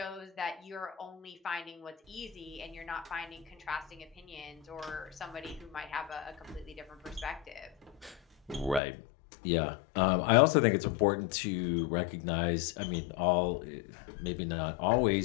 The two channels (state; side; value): drops out; right; at 8.8 s